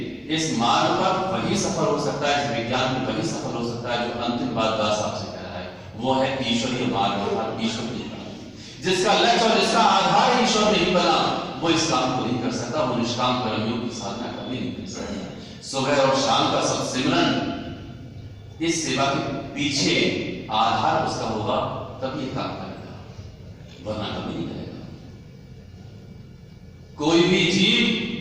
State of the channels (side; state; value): both; identical; correlation 1.00